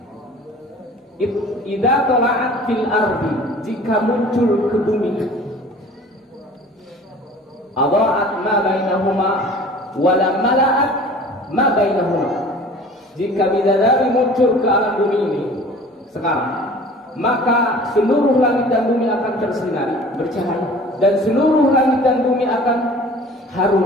idza tala'at fil ardi, jika muncul ke bumi, adha'at ma bainahuma wa lam mala'at ma bainahuma. Jika bidadari muncul ke alam bumi ini sekarang, maka seluruh langit dan bumi akan tersinari, bercahaya, dan seluruh langit dan bumi akan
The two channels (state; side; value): normal; both; correlation 0.45